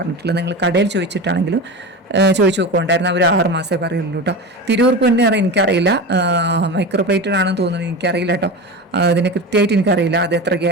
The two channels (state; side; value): normal; both; correlation 0.26